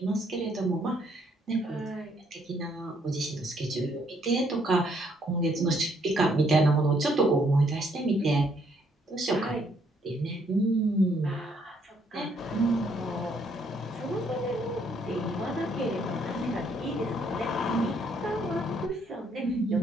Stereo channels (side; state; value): both; normal; correlation 0.69